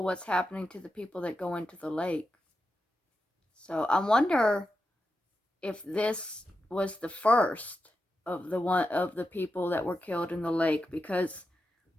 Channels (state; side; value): normal; both; correlation 0.88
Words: happening to the people that go into the lake. So I wonder if this was the first of the people that were killed in the lake, because